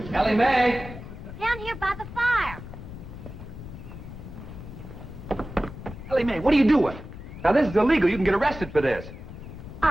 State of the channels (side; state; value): left; noise; rumble, 12 dB below the sound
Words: Ellie Mae! Down here by the fire. Ellie Mae, what are you doing? Now, this is illegal. You can get arrested for this.